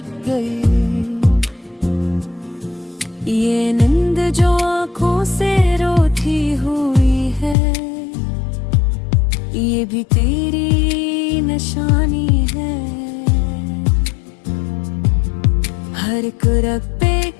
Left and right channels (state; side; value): drops out; right; at 7.6 s